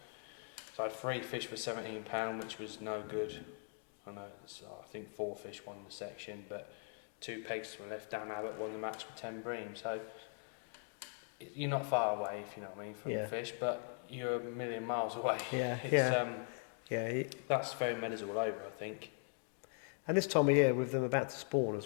So I had 3 fish for £17, which was no good. I know, I think 4 fish won the section, but 2 pegs to my left. Dan Abbott won the match with 10 bream. So you're not far away, if you know what I mean, from the fish, but you're a million miles away. That's very meadows all over, I think. And this time of year, with them about to spawn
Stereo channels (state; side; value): silent; right; 51 dB below the other